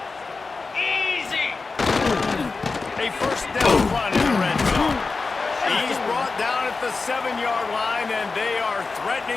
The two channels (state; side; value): quieter; right; 4.1 dB